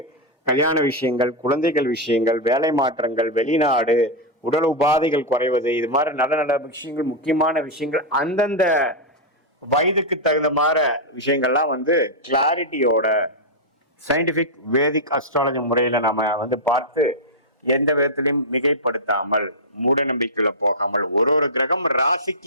கல்யாண விஷயங்கள், குழந்தைகள் விஷயங்கள், வேலை மாற்றங்கள், வெளிநாடு, உடல் உபாதைகள் குறைவது, இது மாதிரி நல்ல நல்ல விஷயங்கள், முக்கியமான விஷயங்கள் அந்தந்த வயதுக்கு தகுந்த மாதிரி விஷயங்கள்லாம் வந்து கிளாரிட்டியோட சயின்டிபிக் வேதிக் அஸ்ட்ராலஜி முறையில நம்ம வந்து பார்த்து எந்த விதத்திலையும் மிகைப்படுத்தாமல் மூட நம்பிக்கையில போகாமல் ஒரு கிரகம்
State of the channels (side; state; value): both; normal; correlation -0.03